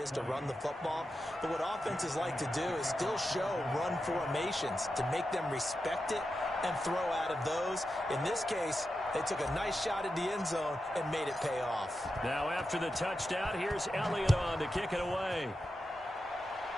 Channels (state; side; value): normal; both; correlation 0.89